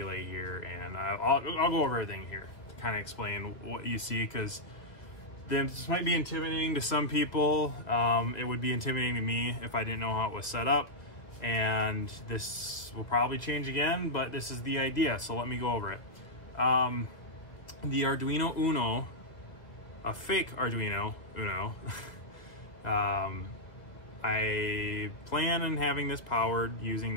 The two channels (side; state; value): right; late; 1.8 ms